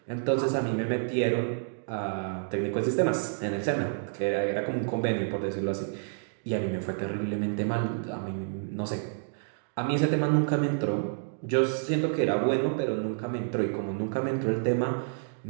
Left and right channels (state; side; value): silent; left; digital silence